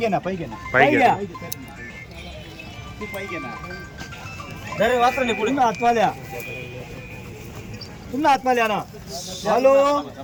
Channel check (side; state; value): both; identical; correlation 1.00